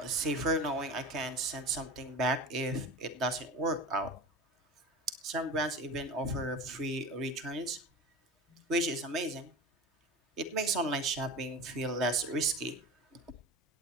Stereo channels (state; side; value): normal; both; correlation 0.33